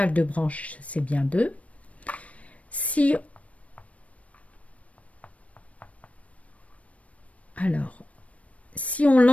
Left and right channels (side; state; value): right; late; 0.065 ms